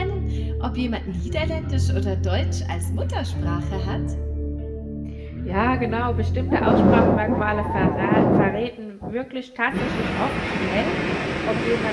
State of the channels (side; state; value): both; identical; correlation 1.00